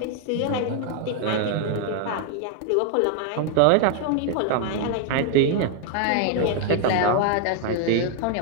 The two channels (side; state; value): both; different; correlation 0.00